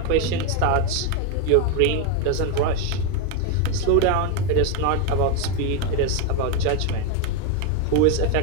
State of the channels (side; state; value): both; different; correlation 0.02